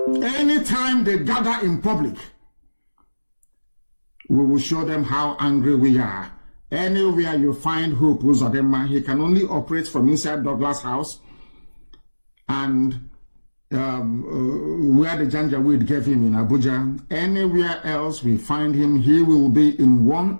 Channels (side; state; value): both; inverted; correlation -1.00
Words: we will show them how angry we are. Anywhere you find Hope Uzodinma, he can only operate from inside Douglas House and where the Janjaweed gave him in Abuja. Anywhere else we find him, he will be in one